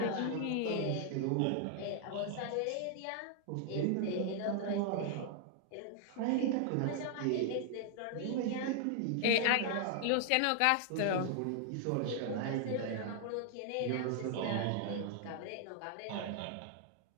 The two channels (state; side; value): different; both; correlation 0.00